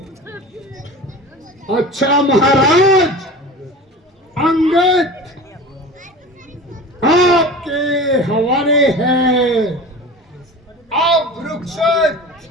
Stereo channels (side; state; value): both; normal; correlation 0.35